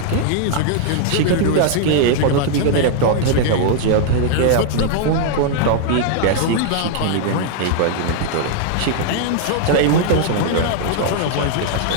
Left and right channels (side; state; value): both; different; correlation 0.00